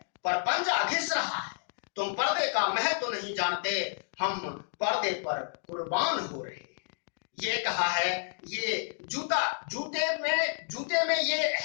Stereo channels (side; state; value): right; silent; digital silence